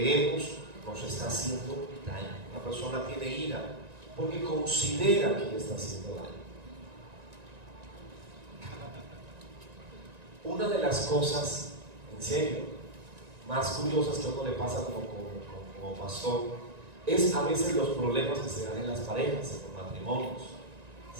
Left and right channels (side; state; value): left; late; 1.9 ms